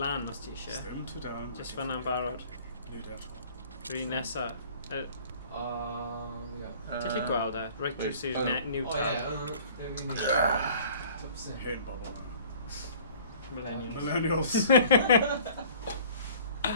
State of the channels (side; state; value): both; inverted; correlation -0.50